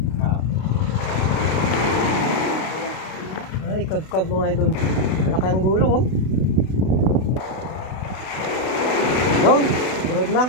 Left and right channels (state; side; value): late; right; 32 ms